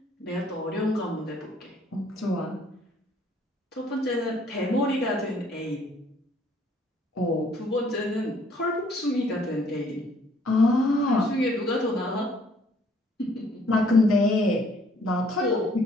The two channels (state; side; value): normal; both; correlation 0.62